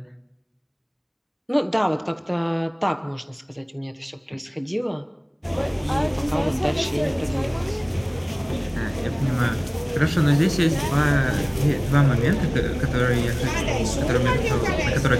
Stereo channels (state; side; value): identical; both; correlation 1.00